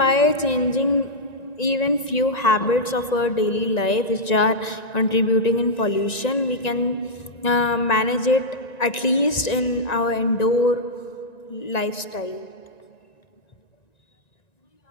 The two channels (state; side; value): late; right; 1.9 ms